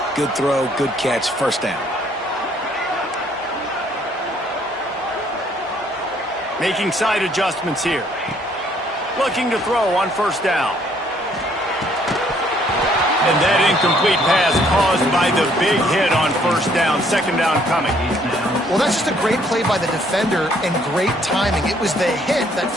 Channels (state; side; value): normal; both; correlation 0.64